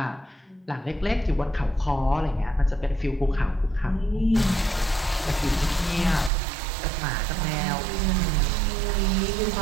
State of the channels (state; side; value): drops out; left; at 6.3 s